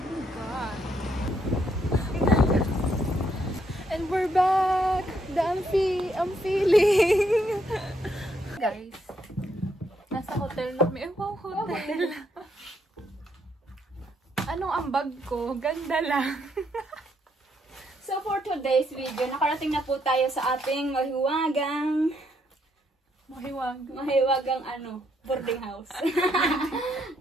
God. And we're back! I'm feeling! Guys, nasa hotel na kami. Wow, hotel! Anong ambag ko? Ganda lang. So for today's video, nakarating na po tayo sa ating mahiwagang boarding house.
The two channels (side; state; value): both; normal; correlation 0.74